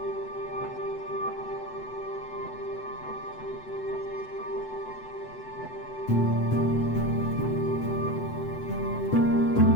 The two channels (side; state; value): right; late; 8.0 ms